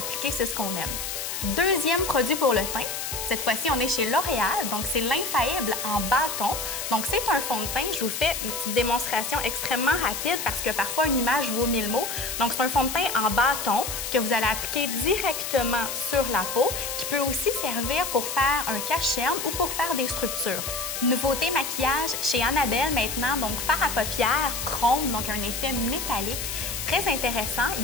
c'est ce qu'on aime. Deuxième produit pour le teint, cette fois-ci, on est chez L'Oréal, donc c'est l'Infaillible en bâton. Donc c'est un fond de teint, je vous fais une petite démonstration extrêmement rapide parce que parfois une image vaut 1000 mots. Donc c'est un fond de teint en bâton que vous allez appliquer directement sur la peau, qui peut aussi servir pour faire un cache-cerne ou pour faire des structures. Nouveauté maquillage chez Annabelle maintenant, donc fard à paupières chrome, donc un effet métallique. Très intéressant,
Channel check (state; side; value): noise; left; hiss, 4 dB below the sound